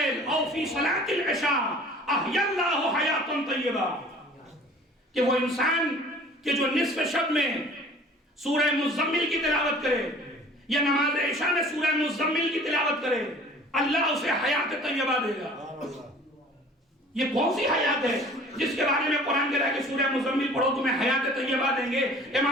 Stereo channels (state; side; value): normal; both; correlation 0.48